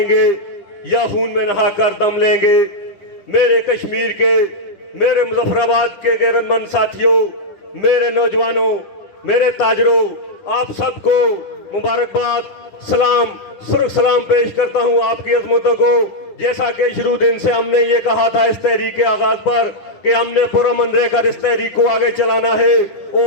گے یا خون میں نہا کر دم لیں گے۔ میرے کشمیر کے، میرے مظفر آباد کے غیرت مند ساتھیوں، میرے نوجوانوں، میرے تاجروں، آپ سب کو مبارکباد، سلام، سرخ سلام پیش کرتا ہوں آپ کی عظمتوں کو۔ جیسا کہ شروع دن سے ہم نے یہ کہا تھا اس تحریک کے آغاز پر کہ ہم نے پرامن رہ کر اس تحریک کو آگے چلانا ہے،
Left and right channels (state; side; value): late; right; 9.9 ms